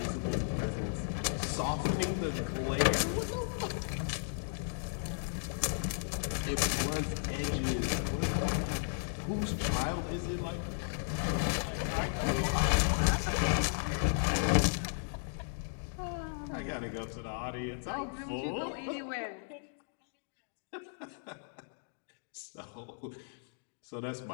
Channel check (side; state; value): right; silent; digital silence